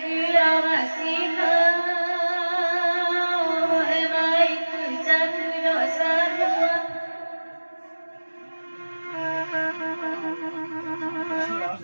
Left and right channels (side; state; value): both; inverted; correlation -1.00